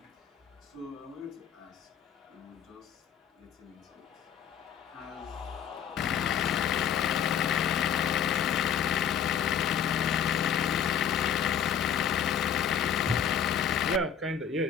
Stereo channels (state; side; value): quieter; right; 8.3 dB